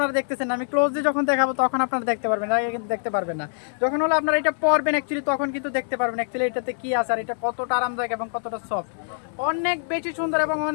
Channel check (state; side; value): silent; right; 62 dB below the other